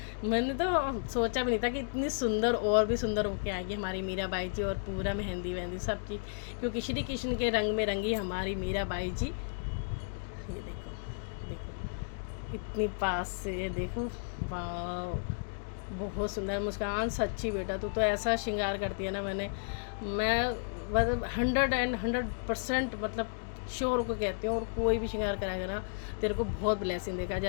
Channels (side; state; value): right; silent; digital silence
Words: मैंने तो सोचा भी नहीं था कि इतनी सुंदर और भी सुंदर होके आएगी हमारी मीराबाई जी। और पूरा मेहंदी वहंदी सब चीज़, क्योंकि श्री कृष्ण के रंग में रंगी हमारी मीराबाई जी। ये देखो इतनी पास से देखो, वाह बहुत सुंदर। मुस्कान सच्ची बेटा, तू तो ऐसा श्रृंगार करती है ना, मैं मतलब 100% मतलब श्योर को कहती हूँ। और कोई भी श्रृंगार कराएगा ना, तेरे को बहुत ब्लेसिंग देगा।